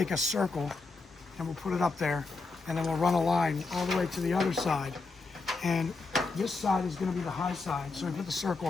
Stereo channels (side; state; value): right; quieter; 3.8 dB